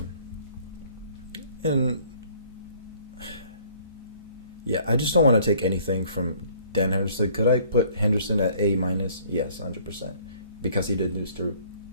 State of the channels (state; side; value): inverted; both; correlation -0.57